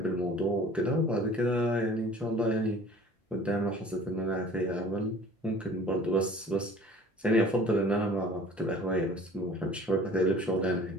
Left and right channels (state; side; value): normal; both; correlation 0.48